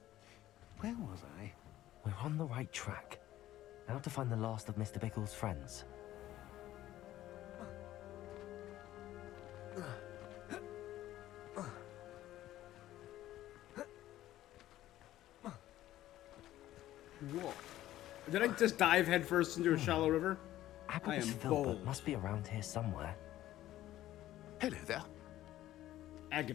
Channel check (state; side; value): quieter; right; 14.1 dB